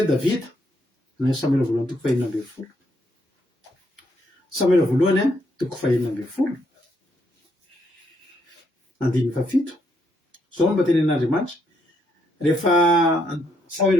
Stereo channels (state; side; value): normal; both; correlation 0.75